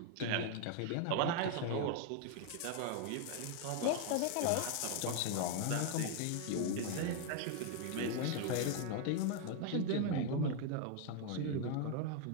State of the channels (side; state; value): both; different; correlation 0.00